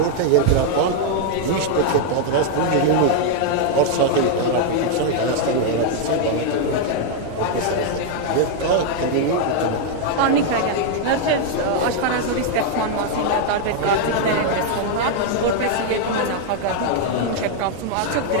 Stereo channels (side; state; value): both; different; correlation 0.00